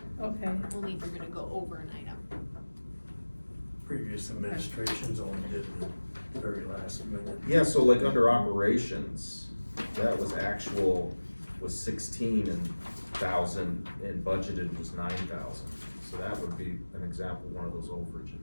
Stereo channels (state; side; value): inverted; both; correlation -1.00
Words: okay, Only if you're gonna go over an item. Previous administrations only did it the very last minute. Yeah, so like under operations, that was actual, was 16,000 and budgeted was 9,000. So that would be an example, one of those